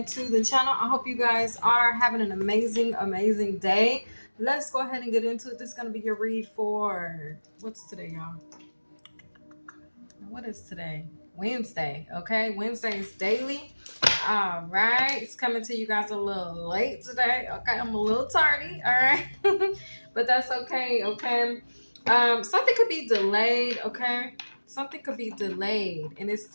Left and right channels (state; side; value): inverted; both; correlation -1.00